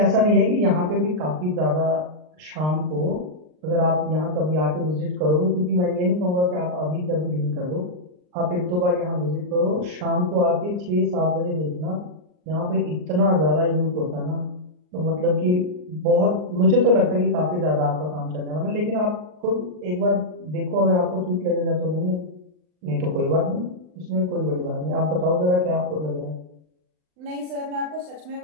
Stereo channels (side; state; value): left; late; 39 ms